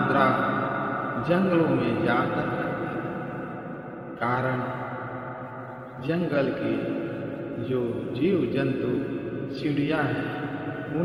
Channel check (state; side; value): identical; both; correlation 1.00